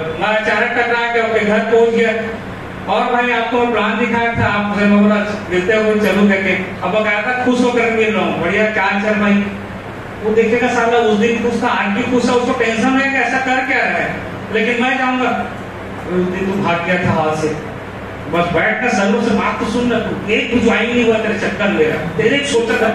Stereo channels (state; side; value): identical; both; correlation 1.00